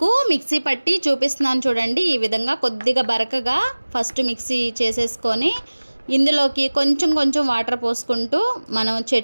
మిక్సీ పట్టి చూపిస్తున్నాను చూడండి. ఈ విధంగా కొద్దిగా బరకగా ఫస్ట్ మిక్సీ చేసేసుకొని ఇందులోకి కొంచెం వాటర్ పోసుకుంటూ మనం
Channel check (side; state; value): both; inverted; correlation -1.00